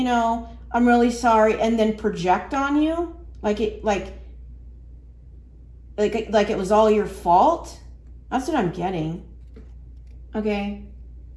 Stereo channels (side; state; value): both; identical; correlation 1.00